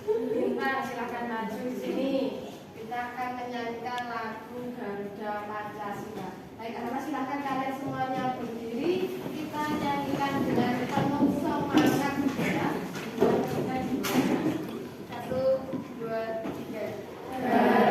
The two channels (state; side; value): identical; both; correlation 1.00